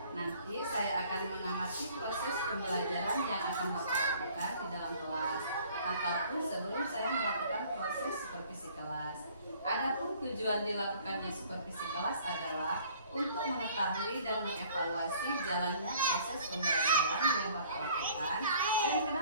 Nanti saya akan mengamati proses pembelajaran yang akan Bapak lakukan di dalam kelas, ataupun sebelum saya melakukan proses supervisi kelas. Adapun tujuan dilakukannya supervisi kelas adalah untuk mengetahui dan mengevaluasi jalannya proses pembelajaran yang Bapak lakukan. Dan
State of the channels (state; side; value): inverted; both; correlation -0.54